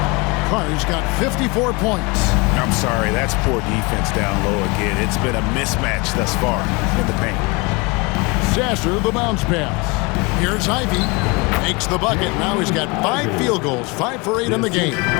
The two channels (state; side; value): quieter; right; 27.5 dB